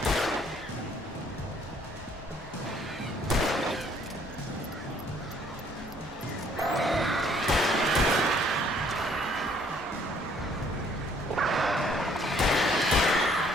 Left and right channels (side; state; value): both; normal; correlation 0.62